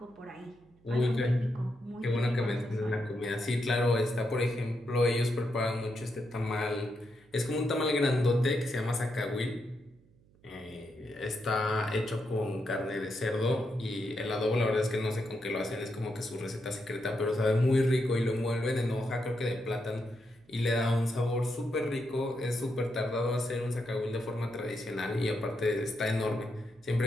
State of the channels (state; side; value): noise; right; hum, 30 dB below the sound